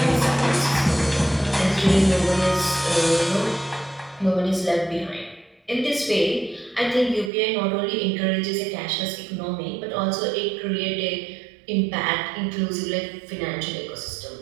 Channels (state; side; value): drops out; left; at 7.3 s